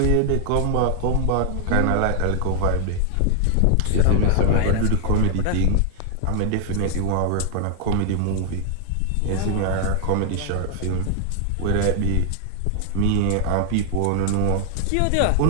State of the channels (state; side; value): different; both; correlation 0.00